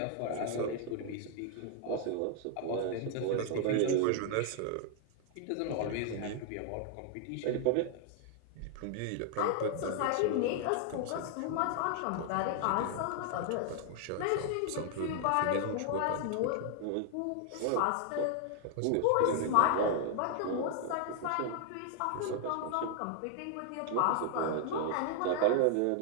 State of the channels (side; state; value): both; different; correlation 0.00